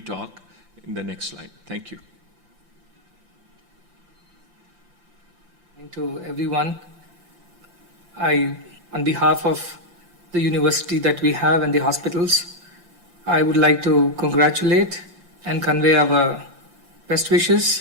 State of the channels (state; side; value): late; left; 5.8 ms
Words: in the next slide. Thank you. To everyone, on behalf of the university that we have and the hospitals, I would like to congratulate and convey our best